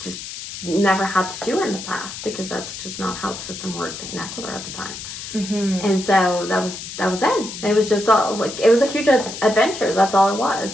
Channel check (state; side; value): noise; left; hiss, 10 dB below the sound